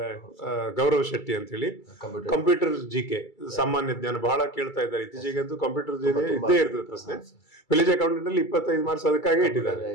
ಗೌರವ್ ಶೆಟ್ಟಿ ಅಂತ ಹೇಳಿ ಕಂಪ್ಯೂಟರ್ GK ಸಾಮಾನ್ಯ ಜ್ಞಾನ ಬಹಳ ಕೇಳ್ತಾ ಇದ್ದಾರೆ. ಇತ್ತೀಚೆಗೆ ಅಂತೂ ಕಂಪ್ಯೂಟರ್ ಇದ್ದೇ ಇರ್ತದೆ ಪ್ರಶ್ನೆ. ವಿಲೇಜ್ ಅಕೌಂಟೆಂಟ್ ಅಲ್ಲಿ 25 ಮಾರ್ಕ್ಸ್ ಅದಕ್ಕಾಗಿ ಇಟ್ಟಿದ್ದಾರೆ.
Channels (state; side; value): late; right; 2.3 ms